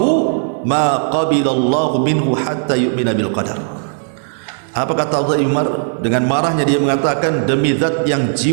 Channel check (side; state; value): left; silent; digital silence